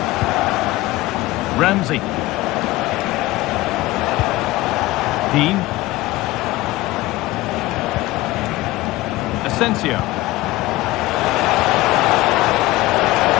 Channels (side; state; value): right; quieter; 18.4 dB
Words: Ramsey. Dean. Asensio.